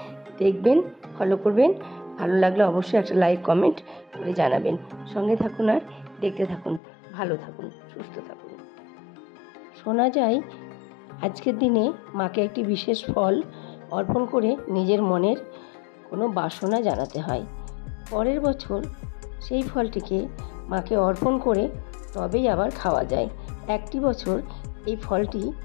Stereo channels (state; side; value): drops out; right; at 6.8 s